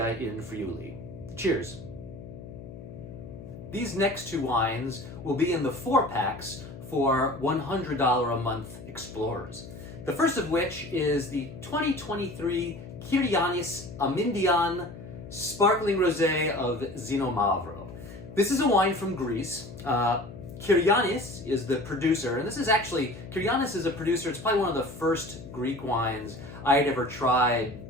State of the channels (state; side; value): noise; left; hum, 14 dB below the sound